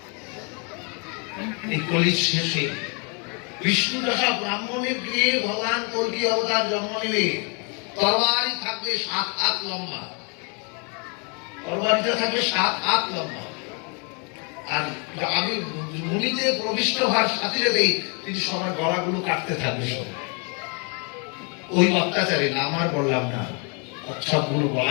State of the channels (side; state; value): right; quieter; 35.1 dB